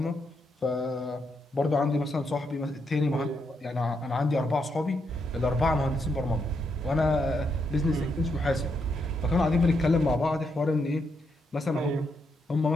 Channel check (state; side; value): normal; both; correlation 0.79